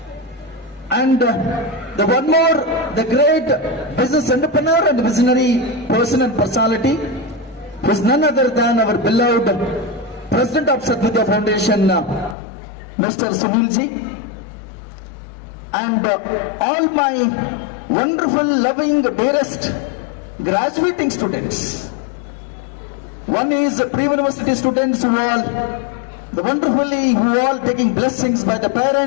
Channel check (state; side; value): drops out; right; at 12.4 s